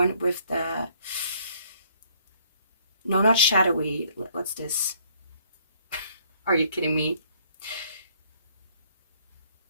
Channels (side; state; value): both; inverted; correlation -0.63